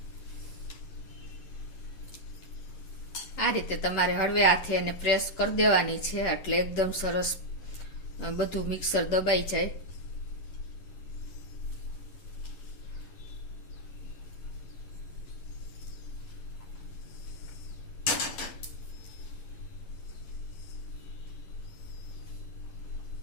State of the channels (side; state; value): right; late; 10 ms